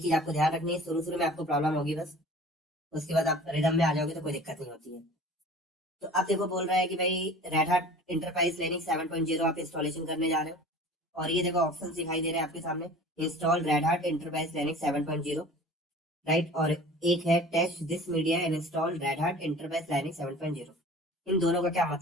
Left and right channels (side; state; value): both; normal; correlation 0.43